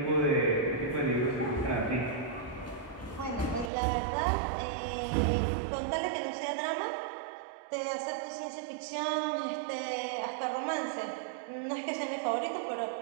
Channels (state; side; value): drops out; left; at 3.7 s